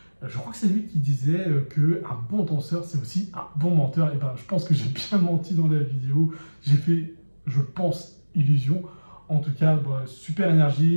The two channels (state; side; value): inverted; both; correlation -1.00